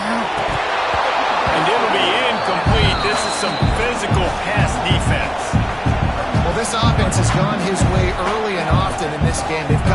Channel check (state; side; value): identical; both; correlation 1.00